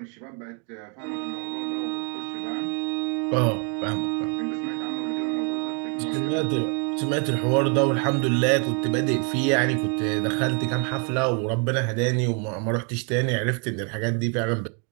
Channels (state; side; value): quieter; left; 37.4 dB